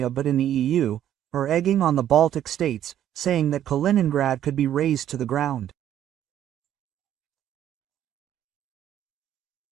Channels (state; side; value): quieter; left; 11.0 dB